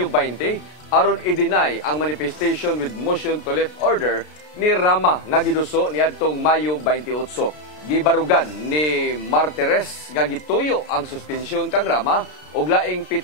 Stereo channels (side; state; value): right; late; 33 ms